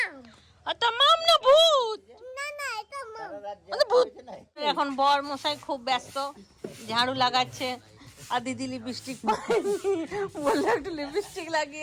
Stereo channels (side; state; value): both; identical; correlation 1.00